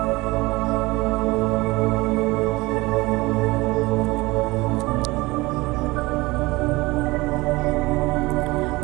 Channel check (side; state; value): left; quieter; 21.8 dB